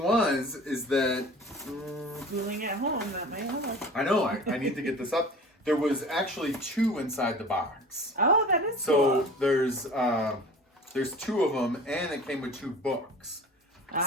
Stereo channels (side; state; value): both; normal; correlation 0.41